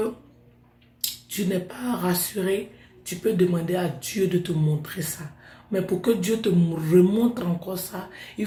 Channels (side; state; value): both; identical; correlation 1.00